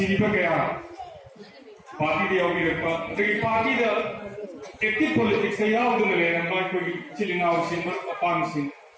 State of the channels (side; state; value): both; identical; correlation 1.00